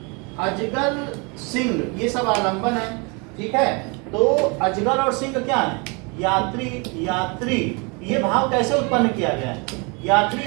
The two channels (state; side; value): quieter; left; 30.9 dB